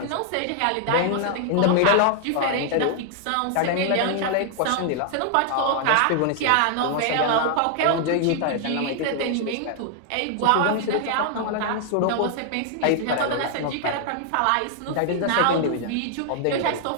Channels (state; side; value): different; both; correlation 0.00